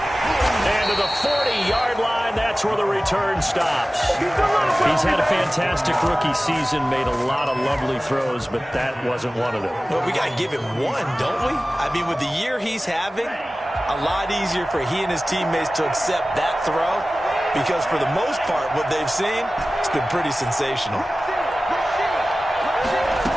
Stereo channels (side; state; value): both; normal; correlation 0.97